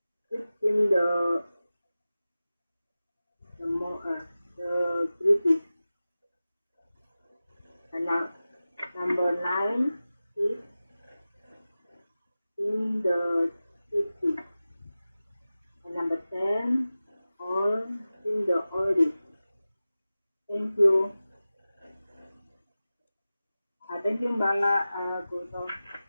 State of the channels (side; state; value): both; inverted; correlation -0.96